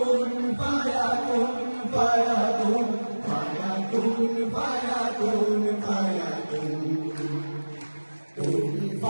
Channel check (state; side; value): inverted; both; correlation -1.00